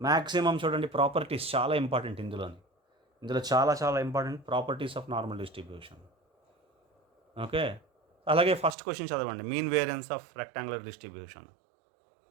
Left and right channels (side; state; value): left; drops out; at 8.8 s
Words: మ్యాక్సిమం చూడండి, ప్రాపర్టీస్ చాలా ఇంపార్టెంట్ ఇందులో చాలా చాలా important properties of normal distribution. Okay, అలాగే ఫస్ట్ క్వశ్చన్ చదవండి, mean variance of rectangular distribution.